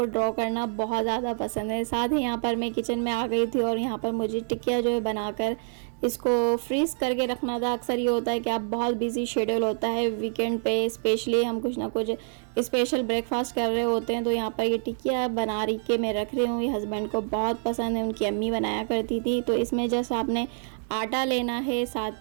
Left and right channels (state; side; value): silent; left; 60 dB below the other